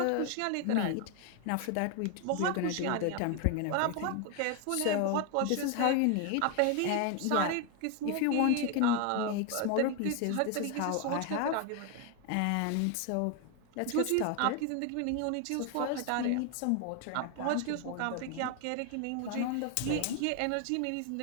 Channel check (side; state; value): both; different; correlation 0.01